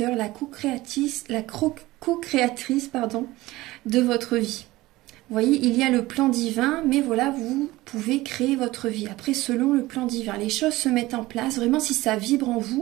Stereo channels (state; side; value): quieter; left; 18.6 dB